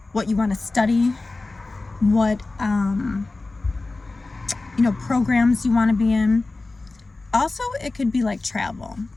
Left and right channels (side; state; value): right; quieter; 3.3 dB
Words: what you want to study, what programs you want to be in. Also, it could be like travel